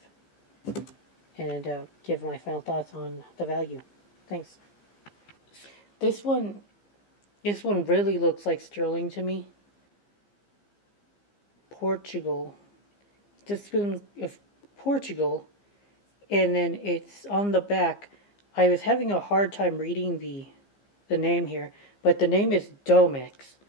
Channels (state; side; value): late; right; 15 ms